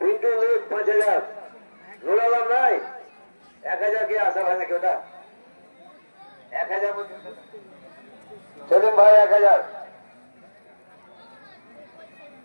লেখ 5000। নুর আলম নাই? 1000 কি আসা হয় নাকি ওটা? 1000 সেলিম ভাই 1000।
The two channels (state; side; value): inverted; both; correlation -1.00